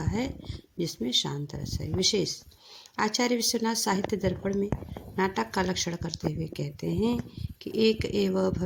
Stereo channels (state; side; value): identical; both; correlation 1.00